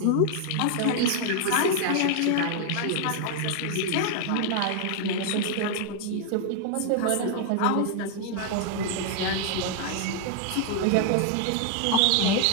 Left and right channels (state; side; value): different; both; correlation 0.00